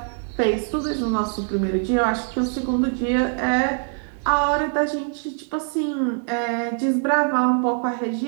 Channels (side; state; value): left; silent; 57 dB below the other